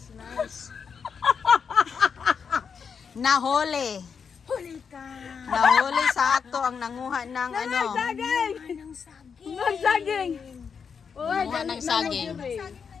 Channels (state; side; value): quieter; right; 6.3 dB